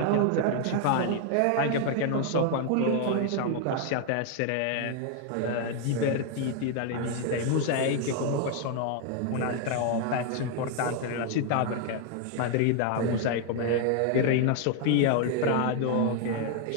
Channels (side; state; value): both; different; correlation 0.00